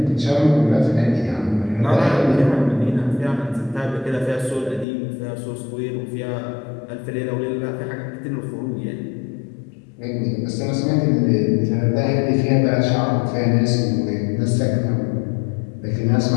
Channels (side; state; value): right; drops out; at 4.9 s